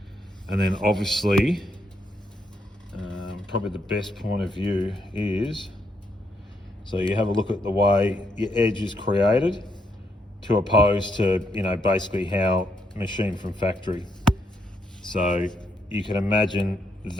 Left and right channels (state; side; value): normal; both; correlation 0.77